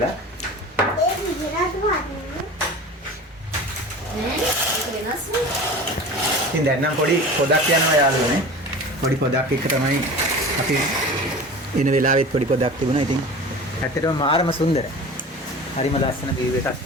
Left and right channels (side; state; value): both; normal; correlation 0.36